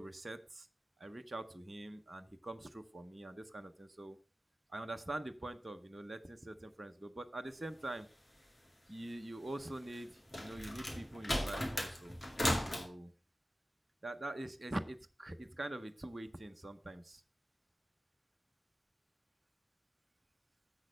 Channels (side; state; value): both; normal; correlation 0.95